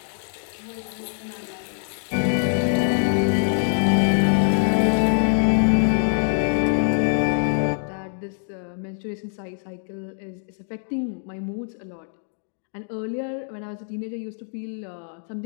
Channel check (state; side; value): silent; right; digital silence